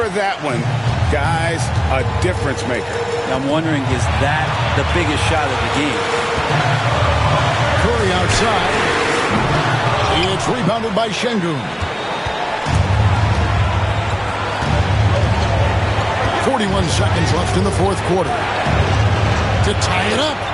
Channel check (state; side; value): identical; both; correlation 1.00